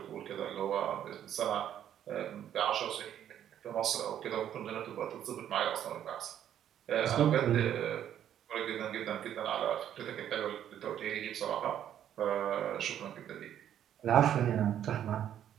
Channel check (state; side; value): quieter; left; 10.4 dB